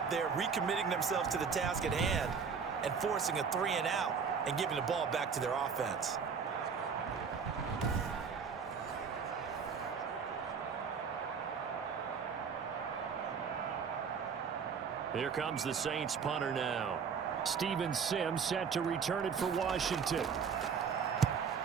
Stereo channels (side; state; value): left; quieter; 6.2 dB